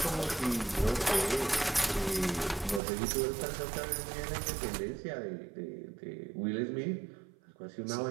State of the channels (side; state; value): left; drops out; at 2.8 s